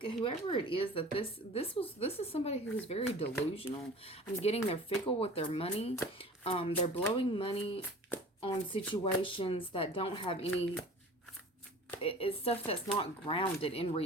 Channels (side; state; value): both; normal; correlation 0.43